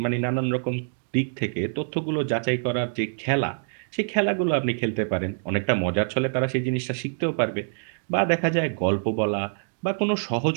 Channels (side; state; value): left; silent; digital silence